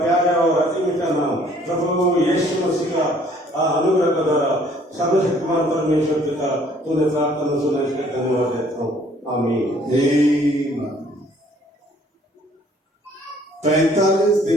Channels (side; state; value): both; normal; correlation 0.59